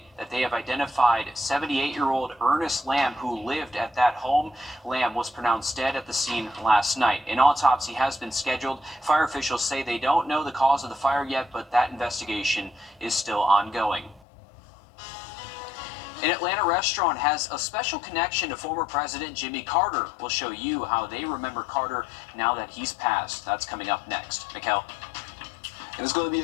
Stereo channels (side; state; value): right; drops out; at 14.2 s